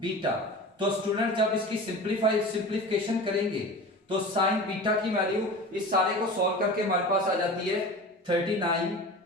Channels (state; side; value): normal; both; correlation 0.34